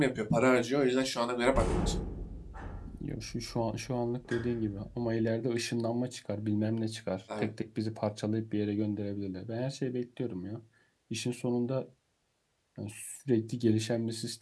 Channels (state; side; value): identical; both; correlation 1.00